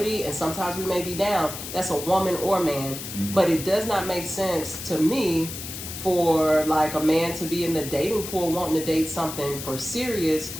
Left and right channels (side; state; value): left; noise; hiss, 9 dB below the sound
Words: and sometimes we may be down. That's a woman or man. But it does not make sense to me for like a man to be in the dating pool wanting to date something for serious,